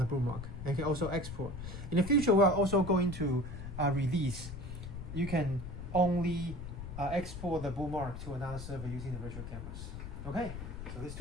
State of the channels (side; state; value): left; noise; rumble, 8 dB below the sound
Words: the bookmark. And you can also export. In the future, we are also going to release. You can only export the bookmark to another server using the virtual cameras. Okay, so there's